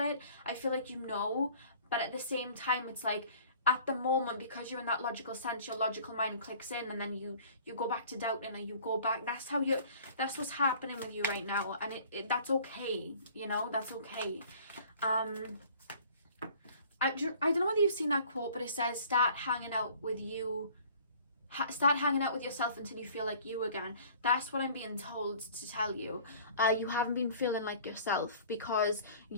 I feel like you know, but at the same time, it's like, at the moment, because you're in that logical sense, your logical mind clicks in, and then you go back to doubting, and you go back. That's what's happening with you right now, and that's okay. You know, that's okay. I don't know whether you've seen that quote, but it says, start hanging out with yourself until you feel like you again. That's what I'm being told to tell you. You haven't been feeling like yourself because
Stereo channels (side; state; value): both; inverted; correlation -0.50